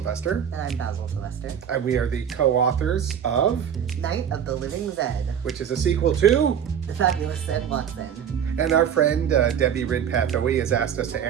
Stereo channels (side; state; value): left; quieter; 8.6 dB